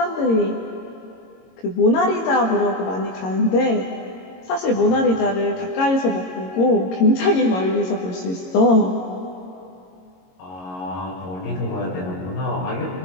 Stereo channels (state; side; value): late; right; 22 ms